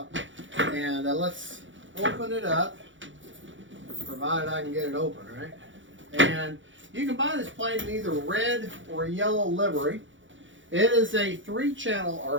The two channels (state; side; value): late; left; 0.56 ms